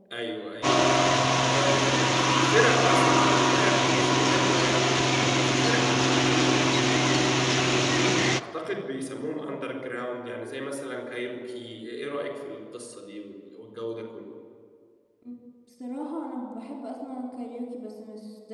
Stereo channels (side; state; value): both; identical; correlation 1.00